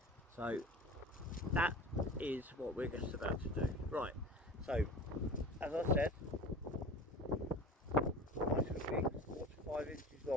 So that is what we're just about to do. Right, so as I said, nice and big, 4 to 5 inches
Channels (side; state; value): both; normal; correlation 0.36